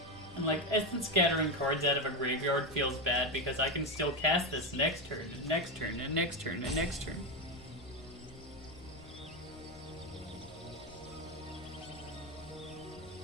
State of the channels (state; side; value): normal; both; correlation 0.12